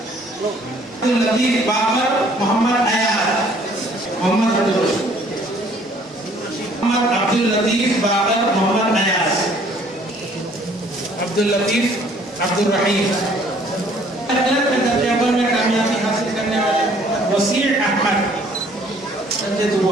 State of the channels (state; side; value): normal; both; correlation 0.59